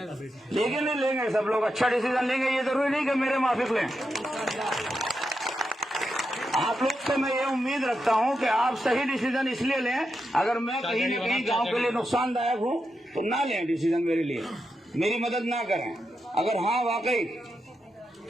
नहीं लेंगे सब लोग अच्छा डिसीजन लेंगे। ये जरूरी नहीं कि मेरे माफिक लें। आप लोग से मैं ये उम्मीद रखता हूं कि आप सही डिसीजन इसलिए लें, अगर मैं कहीं न कहीं गांव के लिए नुकसानदायक हूं तो ना लें डिसीजन मेरे लिए, मेरी मदद ना करें। अगर हाँ वाकई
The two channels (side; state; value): both; normal; correlation 0.86